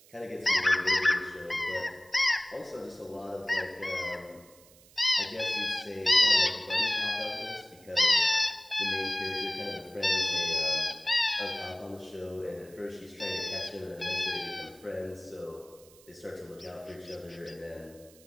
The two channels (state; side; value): noise; right; hiss, 25 dB below the sound